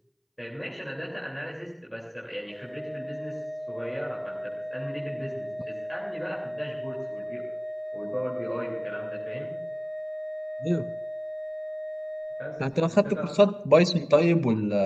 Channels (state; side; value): identical; both; correlation 1.00